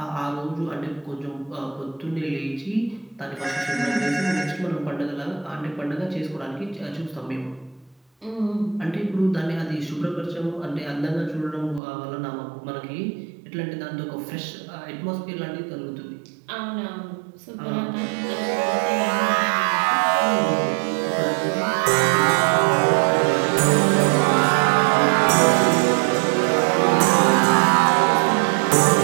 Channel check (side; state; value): left; drops out; at 11.8 s